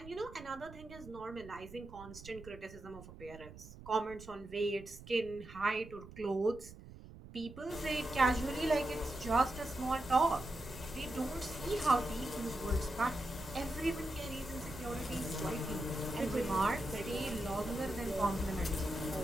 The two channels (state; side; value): noise; right; rumble, 16 dB below the sound